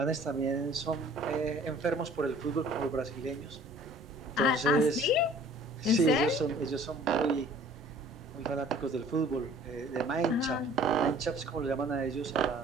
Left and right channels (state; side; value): normal; both; correlation 0.52